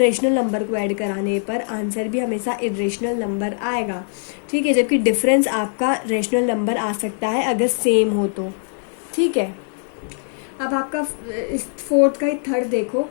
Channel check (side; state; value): right; silent; digital silence